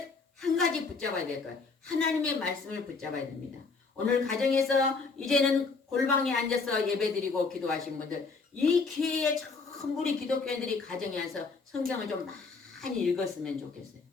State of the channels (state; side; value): quieter; right; 4.4 dB